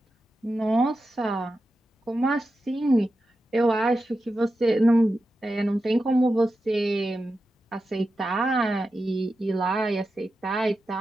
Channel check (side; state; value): both; normal; correlation 0.90